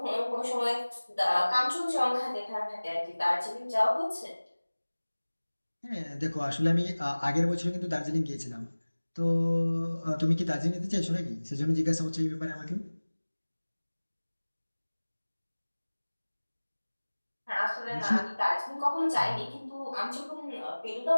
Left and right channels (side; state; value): both; inverted; correlation -1.00